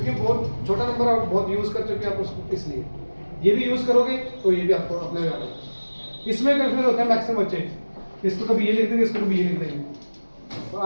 बहुत छोटा नंबर और बहुत यूज कर चुके हैं आप उसको, इसलिए ये भी यूज करोगे तो ये भी आपको अपने याद होगा। इसमें कंफ्यूज होते हैं मैक्सिमम बच्चे, इसको कभी ये लिख देंगे, इसको कभी ये लिख देंगे, और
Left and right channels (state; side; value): inverted; both; correlation -1.00